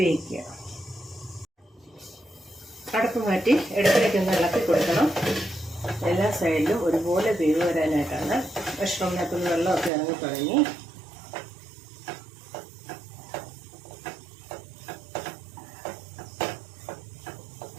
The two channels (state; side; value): drops out; left; at 9.9 s